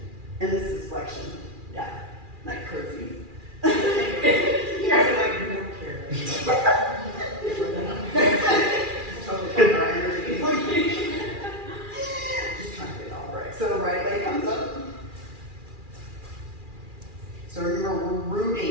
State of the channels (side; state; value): left; late; 2.4 ms